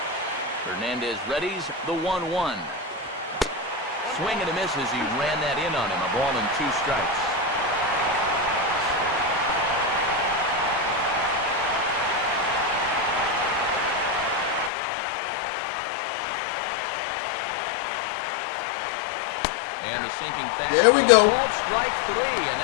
Hernandez readies the 1-1. Swing and a miss as he ran that in on him. A ball and 2 strikes. And the sinking fastball. There we go. Called strike 3, and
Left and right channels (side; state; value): right; drops out; at 14.7 s